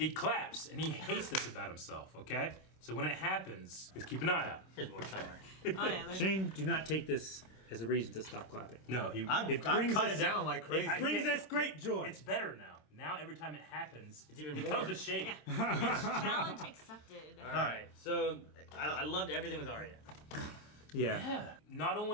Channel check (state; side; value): late; right; 26 ms